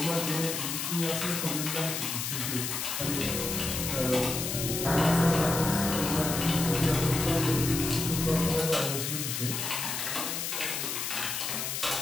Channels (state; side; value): noise; left; hiss, 2 dB below the sound